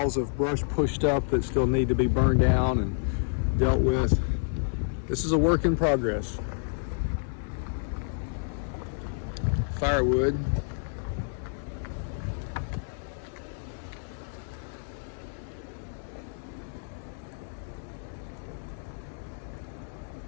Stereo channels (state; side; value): silent; right; 58 dB below the other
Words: of brush pushed up that still need to be burned down and dealt with. This is a work in progress. Firewood.